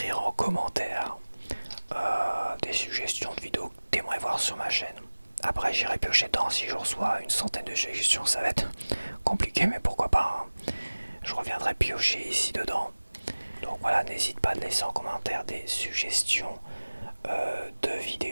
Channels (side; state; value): both; inverted; correlation -1.00